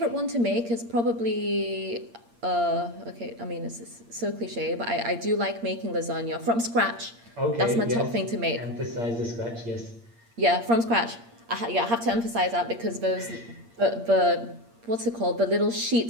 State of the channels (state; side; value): late; left; 8.6 ms